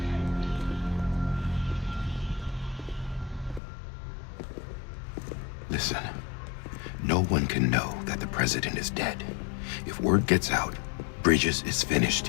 Listen, no one can know that the president is dead. If word gets out, Bridges is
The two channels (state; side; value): drops out; right; at 3.6 s